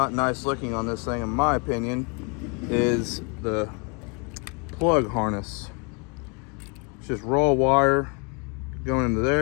nice looking on this thing, in my opinion, is the plug harness. It's just raw wire going into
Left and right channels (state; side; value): quieter; right; 34.3 dB